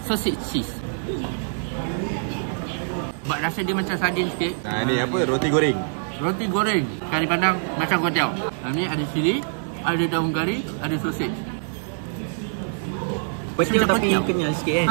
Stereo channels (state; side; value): silent; left; digital silence